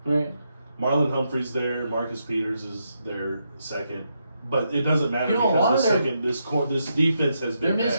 right? Marlon Humphrey's there. Marcus Peters is their second. But it doesn't matter You know, a lot because of the their- second this defense has Their been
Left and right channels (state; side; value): inverted; both; correlation -0.81